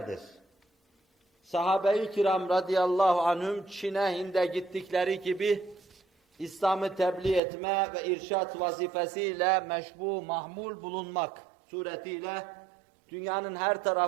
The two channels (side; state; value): left; drops out; at 7.4 s